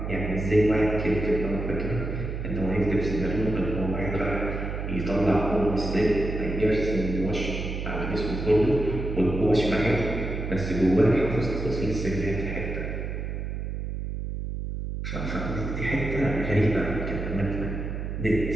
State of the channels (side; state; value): right; noise; hum, 4 dB below the sound